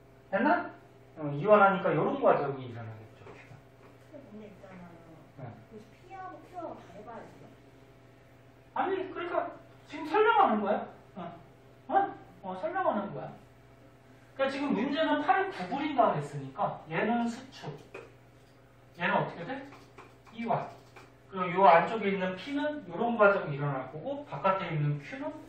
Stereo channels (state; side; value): identical; both; correlation 1.00